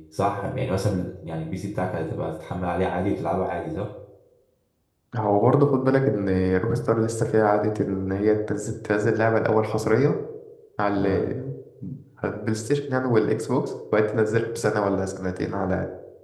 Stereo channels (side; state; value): both; identical; correlation 1.00